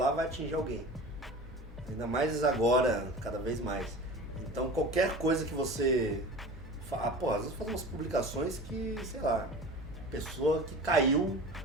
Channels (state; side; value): normal; both; correlation 0.36